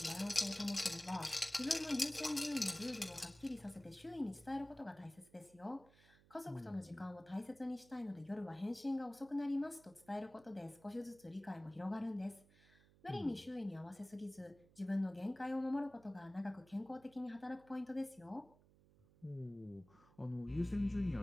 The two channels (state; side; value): noise; right; hum, 26 dB below the sound